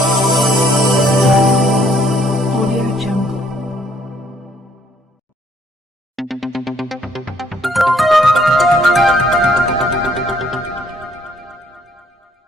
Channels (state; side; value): normal; both; correlation 0.65